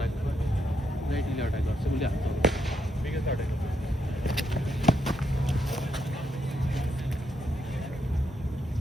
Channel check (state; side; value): normal; both; correlation 0.78